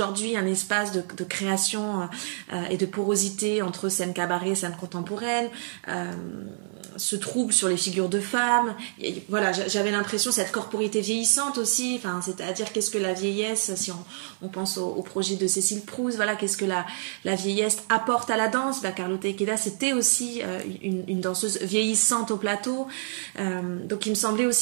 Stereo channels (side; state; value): left; silent; 57 dB below the other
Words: un espace de création et de porosité entre scène cabaret, scène contemporaine, ce trouble sur les figures de femmes. Et voilà, j'avais l'impression cette corporité vieillissante aussi, enfin c'est-à-dire qu'est-ce que la vieillesse, si on pense au projet de Cécile Proust, voilà, qu'est-ce que la vieillesse apporte à la danse. Carlotta Ikeda, c'était aussi une danseuse vieillissante au plateau, donc il me semblait